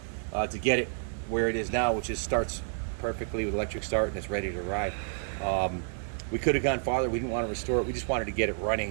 to get it where it is now, which is starts perfectly with electric start and it's ready to ride. We could have gone farther. We didn't want to restore it. We just wanted to get it running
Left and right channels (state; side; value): silent; left; 58 dB below the other